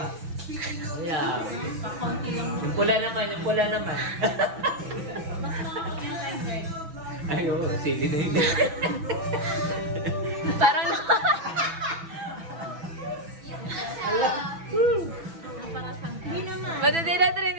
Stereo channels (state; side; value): late; left; 6.0 ms